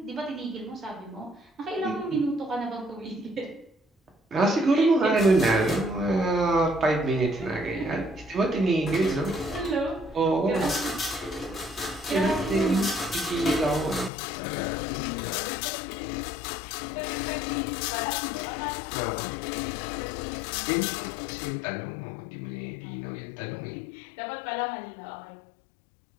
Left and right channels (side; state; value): right; drops out; at 14.1 s